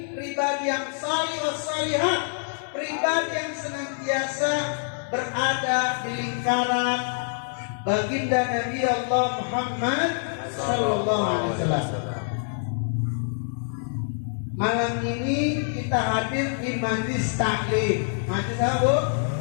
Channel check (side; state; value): right; silent; 61 dB below the other